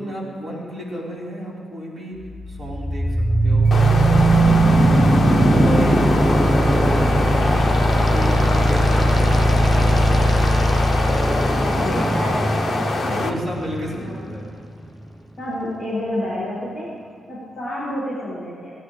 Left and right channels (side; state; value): both; normal; correlation 0.89